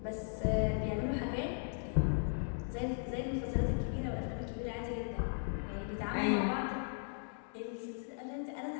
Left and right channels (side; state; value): right; silent; 53 dB below the other